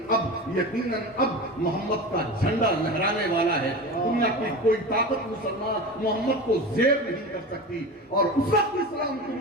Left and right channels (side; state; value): both; normal; correlation 0.29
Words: اب محمد کا جھنڈا لہرانے والا ہے. دنیا کی کوئی طاقت مسلمان محمد کو زیر نہیں کر سکتی. اور اس وقت اسلام